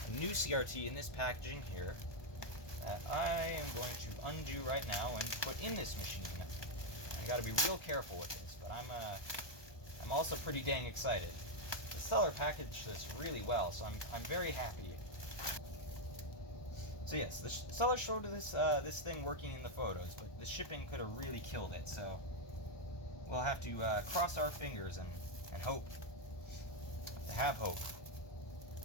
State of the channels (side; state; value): right; late; 1.2 ms